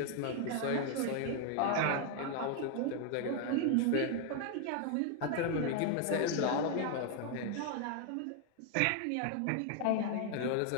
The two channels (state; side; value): different; both; correlation 0.00